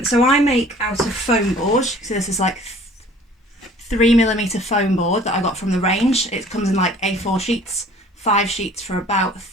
So I make out of foam board. So this is like 3mm foam board that I got from the range. It comes in like A4 sheets, 5 sheets for about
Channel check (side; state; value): both; normal; correlation 0.51